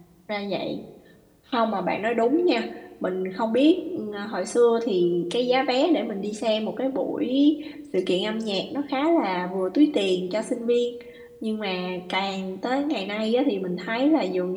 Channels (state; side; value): identical; both; correlation 1.00